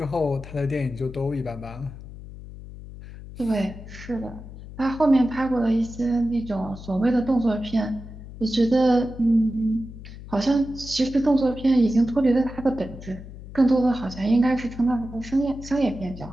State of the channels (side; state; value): left; noise; hum, 14 dB below the sound